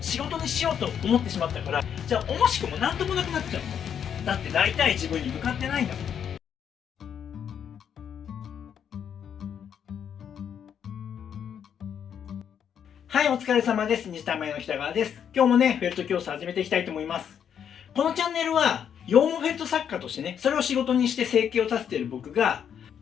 事にしようと思ってしまったから、じゃあ惜しくも何ともなくなっちゃうの。だってなりたい自分に向かってないんだもん。はい、お疲れ様です。西田前の北川です。今日もね、フェルト教室始めていきたいと思います。このチャンネルは、羊毛フェルト作家としてね、それを仕事にして生計を立てている僕が、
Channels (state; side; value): quieter; right; 8.4 dB